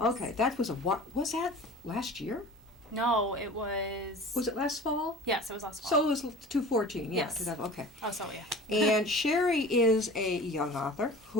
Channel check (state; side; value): normal; both; correlation 0.40